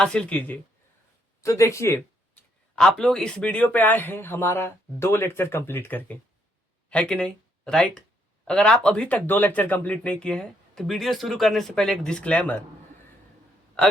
कीजिए। तो देखिए, आप लोग इस वीडियो पे आए हैं हमारा 2 लेक्चर कंप्लीट करके, है कि नहीं? राइट। अगर आप अभी तक 2 लेक्चर कंप्लीट नहीं किए हैं तो वीडियो शुरू करने से पहले एक डिस्क्लेमर।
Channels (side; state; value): both; normal; correlation 0.72